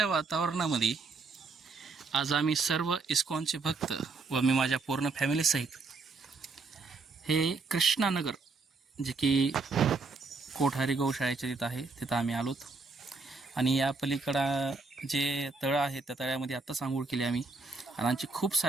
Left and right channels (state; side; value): quieter; left; 4.0 dB